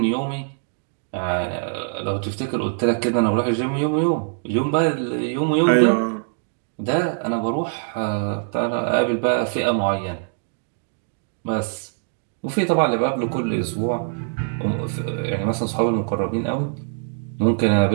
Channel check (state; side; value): silent; left; digital silence